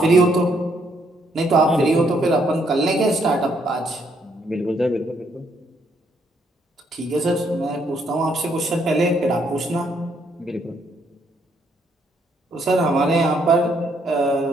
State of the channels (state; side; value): normal; both; correlation 0.71